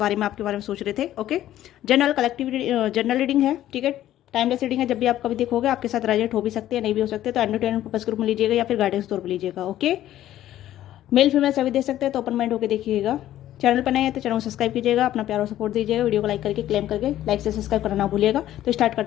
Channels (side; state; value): right; quieter; 13.0 dB